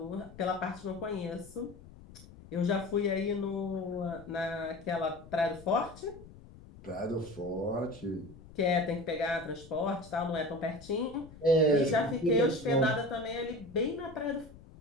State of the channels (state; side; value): noise; left; rumble, 19 dB below the sound